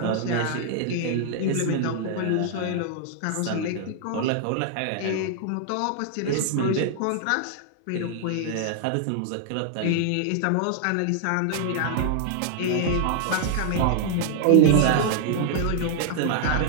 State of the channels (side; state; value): both; different; correlation -0.01